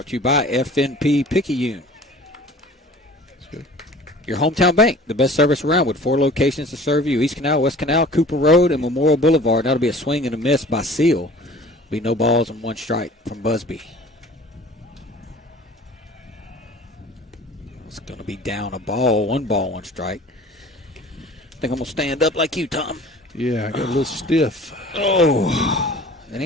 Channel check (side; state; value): both; normal; correlation 0.46